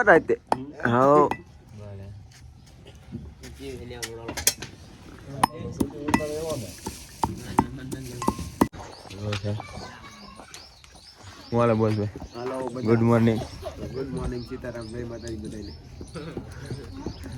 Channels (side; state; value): both; identical; correlation 1.00